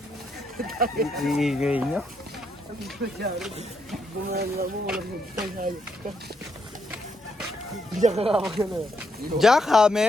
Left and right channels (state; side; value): normal; both; correlation 0.77